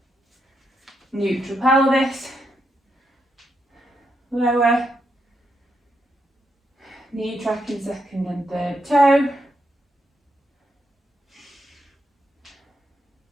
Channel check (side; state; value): both; normal; correlation 0.80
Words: Neutral pelvis, lower, knee tracking second and third toe.